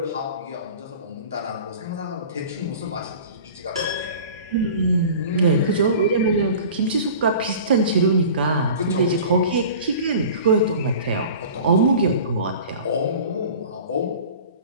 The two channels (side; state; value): both; inverted; correlation -0.40